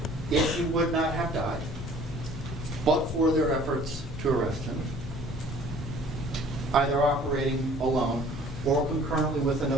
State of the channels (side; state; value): left; noise; hum, 13 dB below the sound